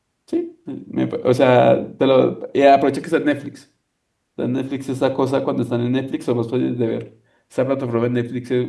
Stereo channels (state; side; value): identical; both; correlation 1.00